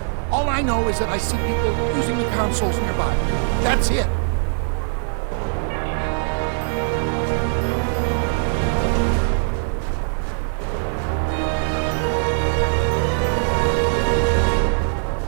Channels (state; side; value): silent; left; 65 dB below the other